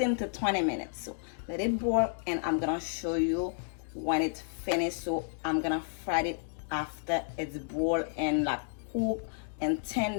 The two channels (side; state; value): right; silent; digital silence